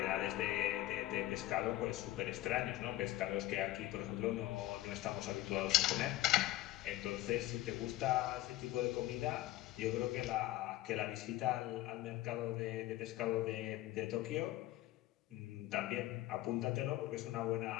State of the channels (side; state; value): right; quieter; 15.9 dB